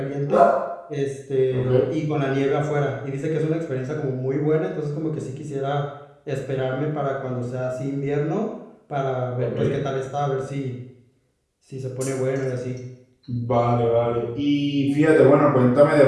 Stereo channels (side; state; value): both; identical; correlation 1.00